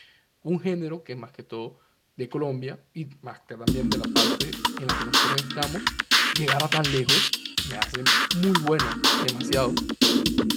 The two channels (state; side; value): identical; both; correlation 1.00